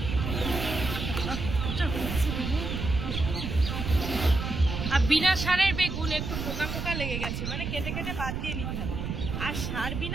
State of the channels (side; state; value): right; noise; rumble, 4 dB below the sound